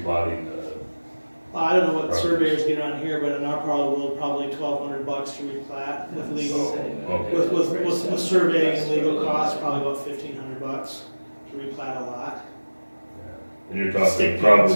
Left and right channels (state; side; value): inverted; both; correlation -1.00